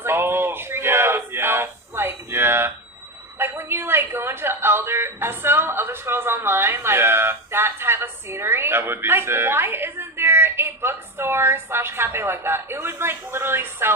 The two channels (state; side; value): normal; both; correlation 0.17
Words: like it's like a tree house. Like when you like go into Elder Scrolls Online, like that type of scenery. That would be like, sick. why isn't there a bookstore / cafe like that? It would like literally